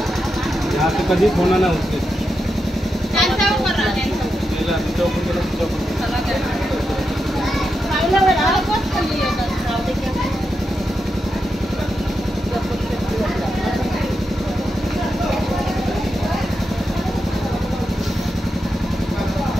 यहाँ पे कभी होना ना उससे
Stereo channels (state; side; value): normal; both; correlation 0.87